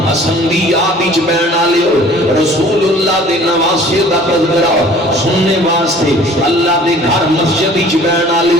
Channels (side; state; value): both; normal; correlation 0.50